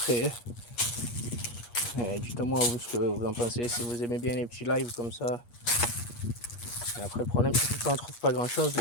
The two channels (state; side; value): late; right; 8.4 ms